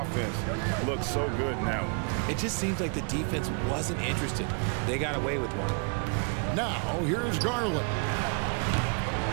looks so good now. It just seems like the defense wasn't interested. They got away with one. Now, here's Garland.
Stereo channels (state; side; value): quieter; left; 36.9 dB